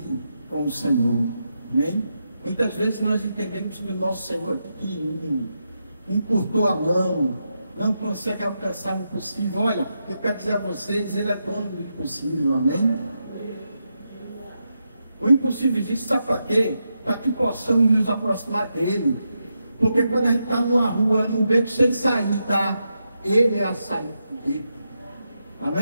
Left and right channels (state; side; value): inverted; both; correlation -0.85